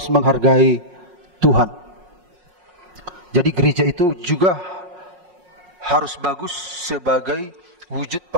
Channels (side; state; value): left; late; 5.5 ms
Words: menghargai Tuhan. Jadi gereja itu juga harus bagus sebagai wujud